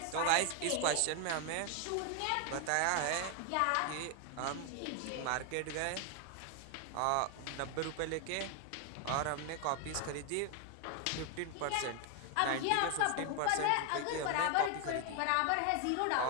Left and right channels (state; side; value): different; both; correlation 0.00